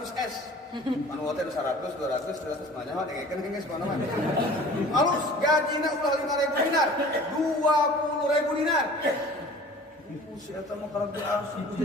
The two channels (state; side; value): normal; both; correlation 0.45